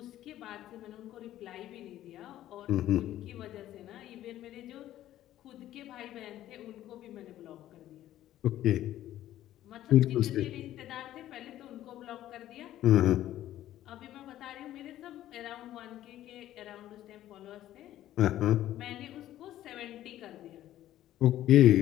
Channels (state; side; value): quieter; right; 13.2 dB